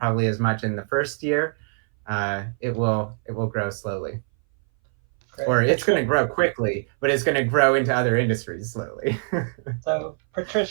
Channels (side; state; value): left; silent; 61 dB below the other